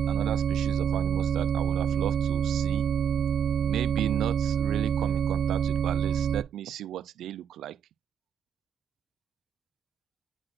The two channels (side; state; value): left; quieter; 8.2 dB